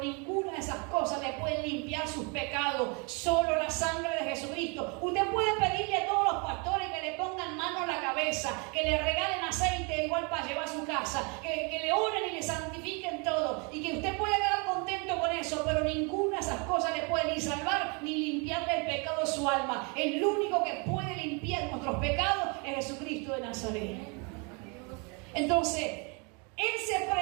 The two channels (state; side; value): quieter; left; 32.9 dB